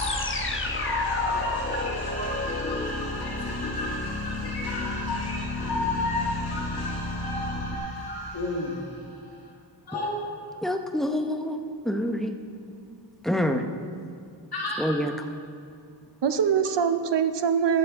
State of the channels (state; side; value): normal; both; correlation 0.20